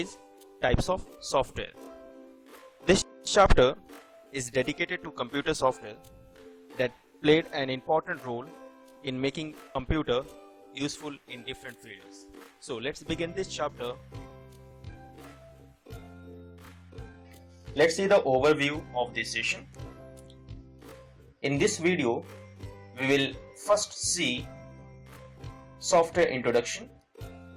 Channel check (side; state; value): both; identical; correlation 1.00